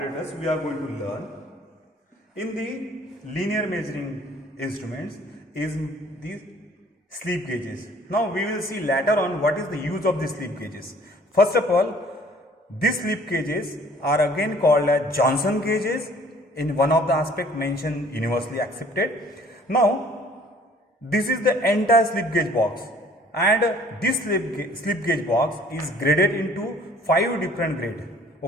we are going to learn in the linear measuring instruments is the slip gauges. Now we will see later on what is the use of the slip gauges. First of all, these slip gauges are again called as Johnson gauges in one of the aspects mentioned universally accepted. Now this is the entire slip gauge box, and this slip gauge box is graded into 5 different grades.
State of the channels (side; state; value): both; normal; correlation 0.55